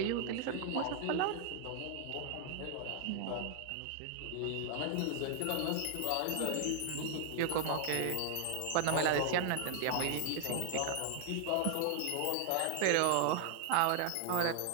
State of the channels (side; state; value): both; different; correlation 0.00